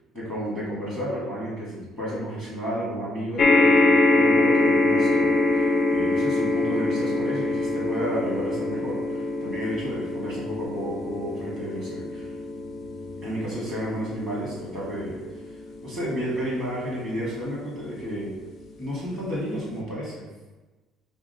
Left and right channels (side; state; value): both; normal; correlation 0.75